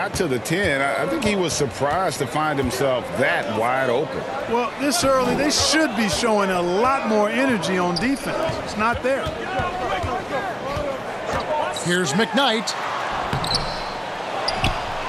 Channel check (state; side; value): identical; both; correlation 1.00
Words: to the 10, I think he was surprised to find himself that wide open. Well, this early, they should be showing a lot more energy on defense. It's not there. Here's McKnight.